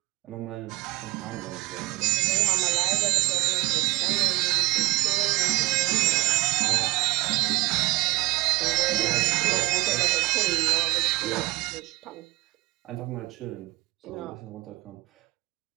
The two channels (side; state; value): left; quieter; 21.6 dB